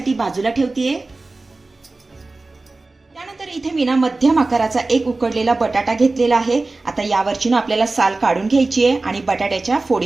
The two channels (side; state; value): left; quieter; 3.3 dB